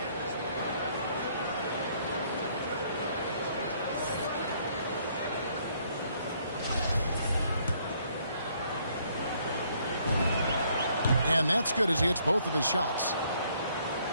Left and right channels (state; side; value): inverted; both; correlation -0.66